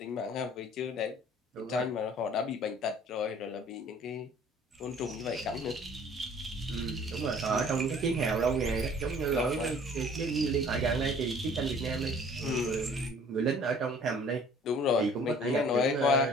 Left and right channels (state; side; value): normal; both; correlation 0.52